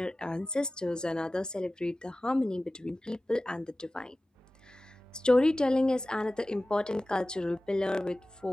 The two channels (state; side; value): normal; both; correlation 0.96